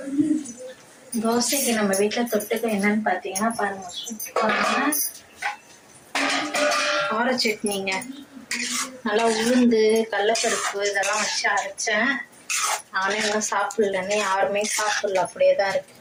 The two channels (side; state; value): both; identical; correlation 1.00